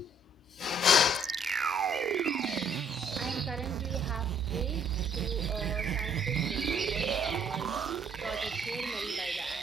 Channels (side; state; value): both; normal; correlation 0.64